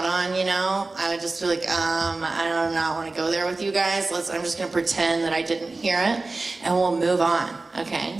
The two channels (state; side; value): quieter; left; 3.4 dB